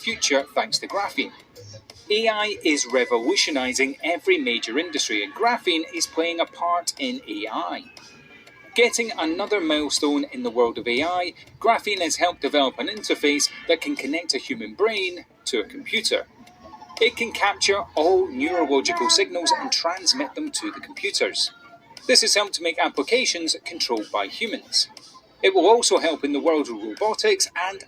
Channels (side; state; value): both; identical; correlation 1.00